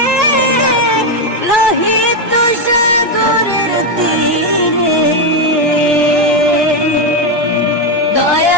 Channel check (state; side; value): normal; both; correlation 0.06